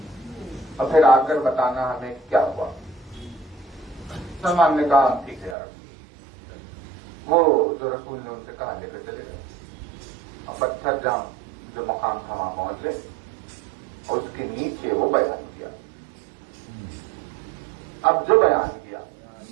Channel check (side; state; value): left; drops out; at 5.6 s